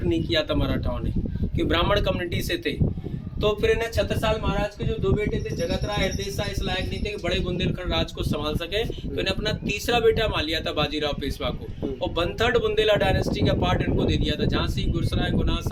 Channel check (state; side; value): identical; both; correlation 1.00